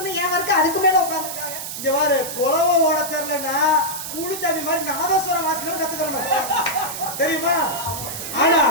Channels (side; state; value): right; noise; hiss, 7 dB below the sound